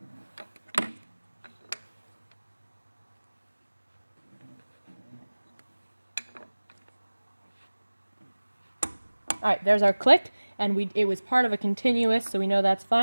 Alright, there's our click, and it was part of a continuous, so we know that's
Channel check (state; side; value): inverted; both; correlation -1.00